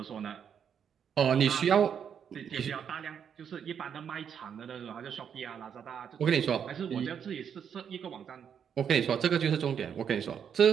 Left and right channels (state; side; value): quieter; left; 7.9 dB